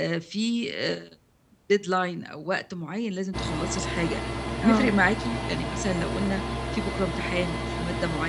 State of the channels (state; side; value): identical; both; correlation 1.00